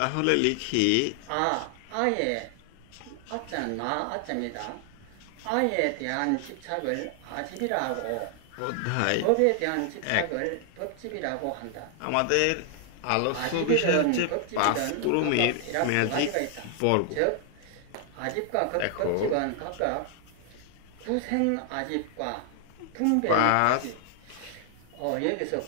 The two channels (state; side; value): different; both; correlation 0.00